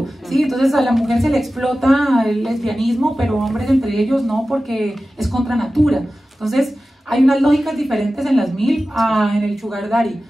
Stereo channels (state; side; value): normal; both; correlation 0.95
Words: ¿sí? Entonces a la mujer se le explota el lesbianismo, pero hombres entre ellos no, porque es contra natura. Entonces hay unas lógicas diferentes en las MILF en el Sugar Daddy,